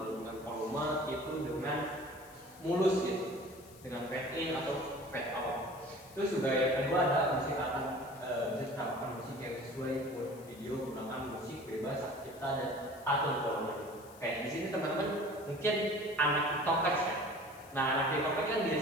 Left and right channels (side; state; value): left; noise; hiss, 22 dB below the sound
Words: volume itu dengan mulus gitu, dengan fade in atau fade out. Terus juga yang kedua ada musik bisa musik yang sesuai buat video, gunakan musik bebas cipta dan atur volume. Kayak di sini teman-teman mungkin anak TikTokers ya. Nah, anak TikTok kan